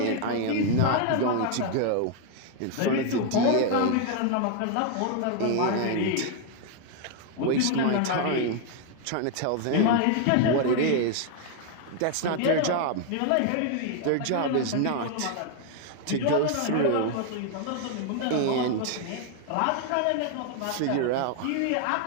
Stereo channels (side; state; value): both; different; correlation 0.00